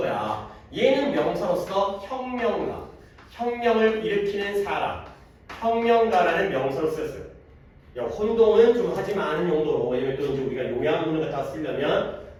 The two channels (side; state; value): both; identical; correlation 1.00